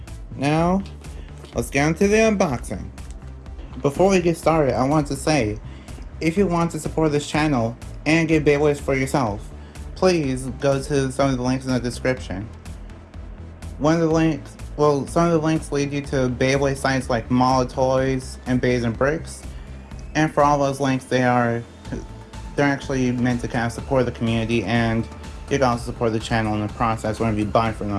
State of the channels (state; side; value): identical; both; correlation 1.00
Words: now, let's get into the unboxing. Before we get started, I want to say, if you want to support this channel and get Beyblades for yourself, please go to some of the links in the description. Some of the links lead you to Beyblade sites like Mall of Toys and Bays and Bricks. And for all those links, they're actually meant to kind of support the community, and you can also support the channel in the process whenever you buy from